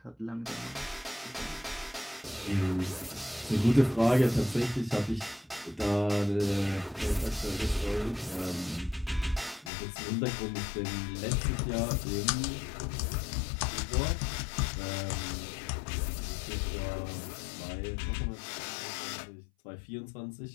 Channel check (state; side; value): drops out; right; at 9.7 s